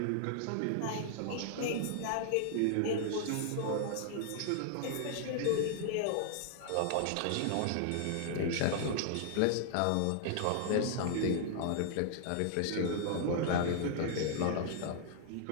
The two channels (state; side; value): different; both; correlation -0.01